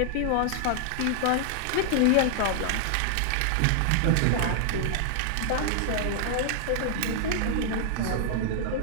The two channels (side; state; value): both; different; correlation -0.01